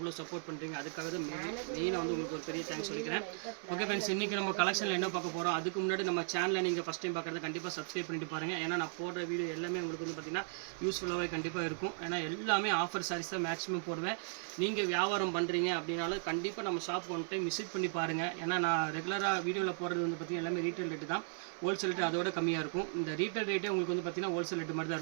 சப்போர்ட் பண்ணுறீங்க. அதுக்காக தான் மெயினாக வந்து உங்களுக்கு ஒரு பெரிய தேங்க்ஸ் சொல்லிக்கிறேன். ஓகே ஃப்ரெண்ட்ஸ், இன்றைக்கி நம்ம கலெக்ஷனில் என்ன பார்க்க போகிறோம், அதுக்கு முன்னாடி நம்ம சேனலில் நீங்கள் ஃபஸ்ட் டைம் பார்க்குறது கண்டிப்பாக சப்ஸ்கிரைப் பண்ணிட்டு பாருங்கள். ஏன்னா நான் போடுற வீடியோ எல்லாமே உங்களுக்கு வந்து பார்த்திங்கன்னா யூஸ்ஃபுல்லாகவே கண்டிப்பாக இருக்கும். ஏன்னா எல்லாமே ஆஃபர் சாரீஸ் தான் மேக்ஸிமம் போடுவேன். நீங்கள் வியாபாரம் பண்ணுறீங்க அப்படின்னாலும் கண்டிப்பாக நம்ம ஷாப் ஒன் டைம் விசிட் பண்ணி பாருங்கள். ஏன்னா நான் ரெகுலராக வீடியோவில் போகிறது வந்து பார்த்திங்கன்னா எல்லாமே ரீட்டைல் ரேட்டு தான். ஹோல்சேல் ரேட்டு அதோட கம்மியாக இருக்கும். இந்த ரீட்டைல் ரேட்டே உங்களுக்கு வந்து பார்த்திங்கன்னா ஹோல்சேல் ரேட்டு மாதிரி தான்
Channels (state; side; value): silent; left; 54 dB below the other